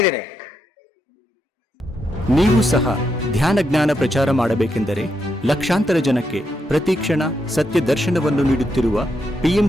ನೀವು ಸಹ ಧ್ಯಾನ ಜ್ಞಾನ ಪ್ರಚಾರ ಮಾಡಬೇಕೆಂದರೆ ಲಕ್ಷಾಂತರ ಜನಕ್ಕೆ ಪ್ರತಿಕ್ಷಣ ಸತ್ಯ ದರ್ಶನವನ್ನು ನೀಡುತ್ತಿರುವ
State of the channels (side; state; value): both; normal; correlation 0.82